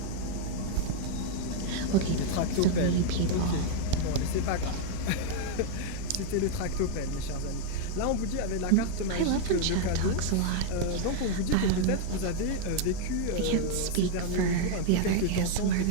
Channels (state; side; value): different; both; correlation 0.00